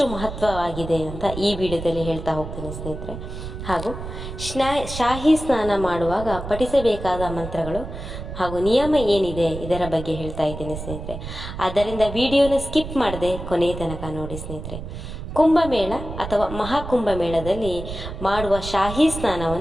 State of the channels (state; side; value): noise; right; rumble, 9 dB below the sound